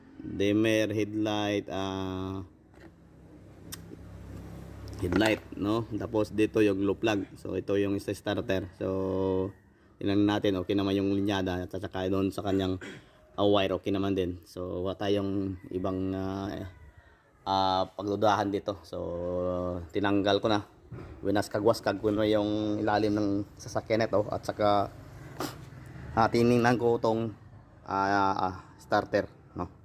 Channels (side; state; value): both; identical; correlation 1.00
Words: dimmer, headlight, no. Tapos dito yung glow plug. So ito yung sa starter. So tingnan natin okay naman yung linyada at saka doon sa kanyang wire okay naman din. So wala tayong ibang pagdudahan dito. So tinanggal ko na. Winaskag-waskag ko na yung ilalim ng sasakyan nito at saka tiningnan ko itong starter, no.